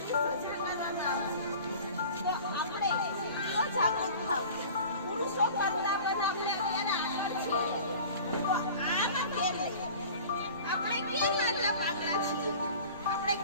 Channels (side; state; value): both; inverted; correlation -0.42